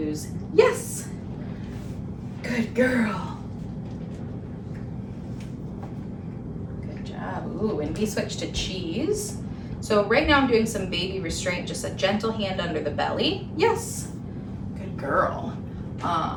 yes. Good girl. Good job. Ooh, and we switch to cheese. So right now I'm doing some baby restraint, just a gentle hand under the belly. Yes. Good girl.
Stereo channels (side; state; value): both; identical; correlation 1.00